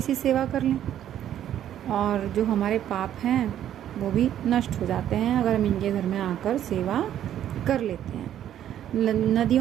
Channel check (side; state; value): left; quieter; 11.0 dB